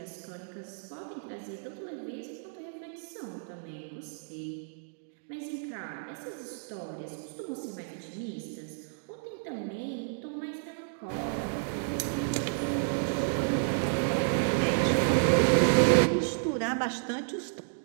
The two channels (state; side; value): silent; left; digital silence